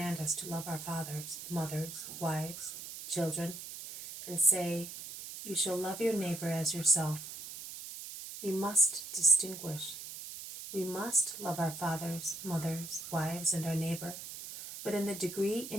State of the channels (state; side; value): noise; right; hiss, 10 dB below the sound